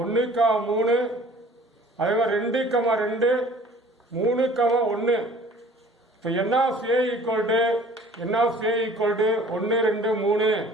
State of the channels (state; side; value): normal; both; correlation 0.50